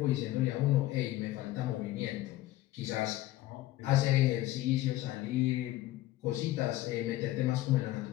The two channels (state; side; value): quieter; right; 16.0 dB